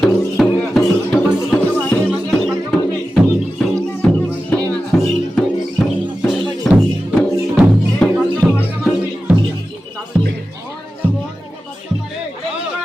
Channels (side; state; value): both; normal; correlation 0.93